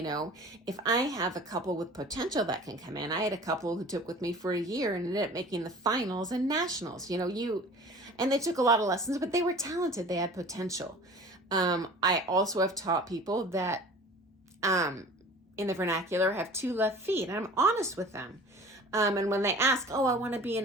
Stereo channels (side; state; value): both; normal; correlation 0.43